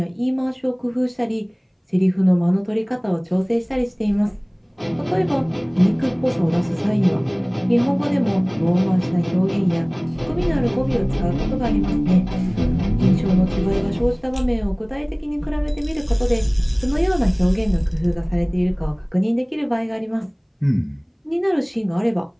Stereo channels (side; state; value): both; identical; correlation 1.00